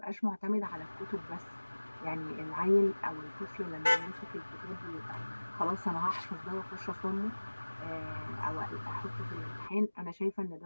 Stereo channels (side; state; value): both; inverted; correlation -1.00